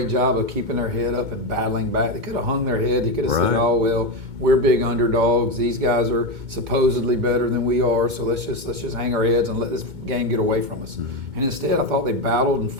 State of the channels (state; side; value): late; left; 2.2 ms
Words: job of keeping their head up and battling back. They could have hung their head. They could have said, "Oh well, we're big underdogs. These guys are supposedly better than we are. So let's just hang our heads and let this game get away from us." And instead, I thought they battled and